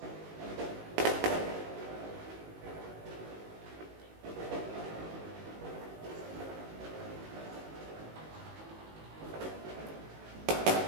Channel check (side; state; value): left; late; 19 ms